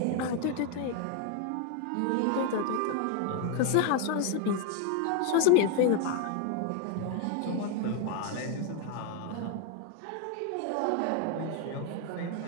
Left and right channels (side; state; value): both; different; correlation 0.01